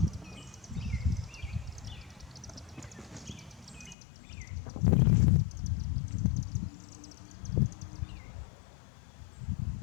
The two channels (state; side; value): drops out; right; at 4.0 s